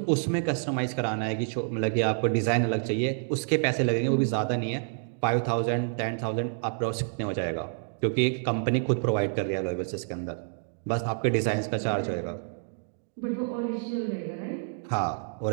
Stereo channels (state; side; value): silent; left; digital silence